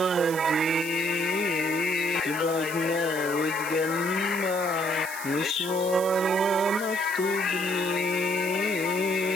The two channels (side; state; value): right; noise; hiss, 10 dB below the sound